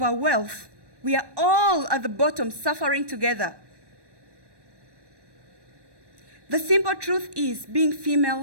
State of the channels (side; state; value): left; late; 1.1 ms